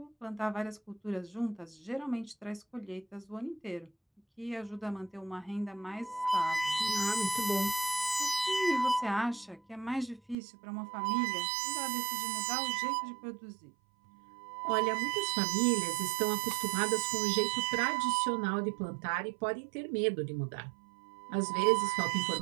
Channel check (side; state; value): left; drops out; at 10.4 s